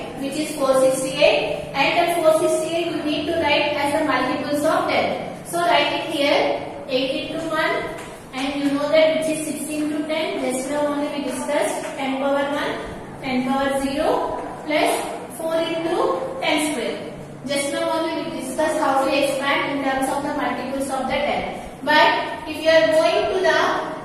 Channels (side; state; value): both; identical; correlation 1.00